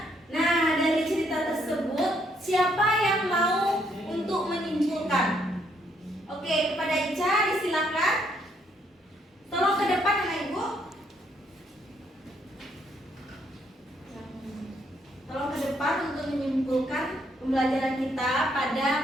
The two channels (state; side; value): normal; both; correlation 0.71